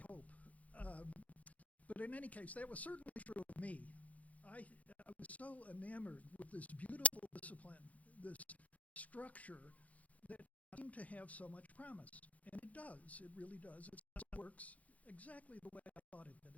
hope. But in any case, that was certainly true of me. I was so enamored with this beautiful discipline, this structure that seemed to have so much promise. And it does, it really does. It works exactly the way I thought it did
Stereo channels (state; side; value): late; right; 0.069 ms